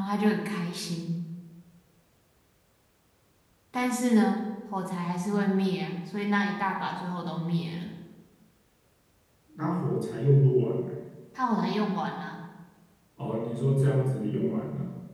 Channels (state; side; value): identical; both; correlation 1.00